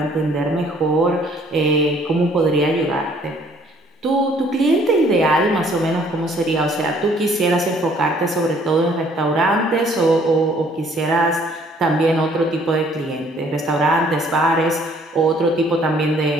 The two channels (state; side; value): normal; both; correlation 0.60